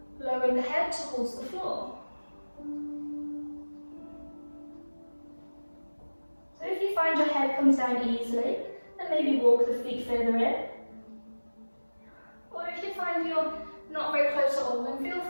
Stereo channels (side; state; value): both; inverted; correlation -1.00